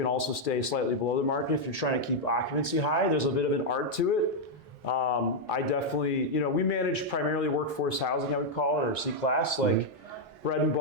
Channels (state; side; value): normal; both; correlation -0.01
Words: also stay slightly below the market if you're trying to keep occupancy high. There's a bit of an art to it. I definitely, we manage primarily workforce housing, I would call it, or C-class, like bread and